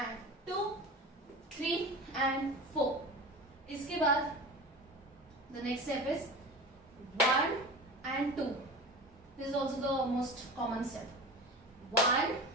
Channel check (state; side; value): normal; both; correlation 0.33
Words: 2, 3 and 4. इसके बाद the next step is 1 and 2. This is also the most common step. 1,